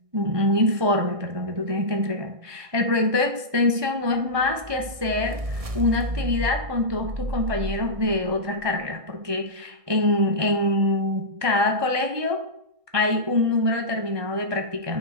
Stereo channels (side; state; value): left; late; 1.6 ms